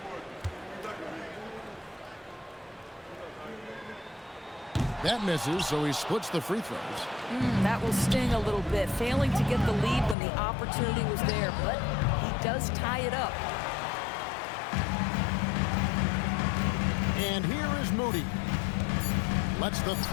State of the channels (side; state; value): right; drops out; at 10.2 s